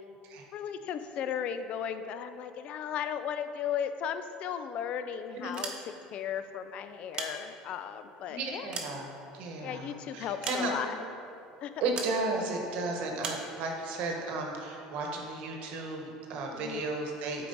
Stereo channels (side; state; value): both; normal; correlation 0.36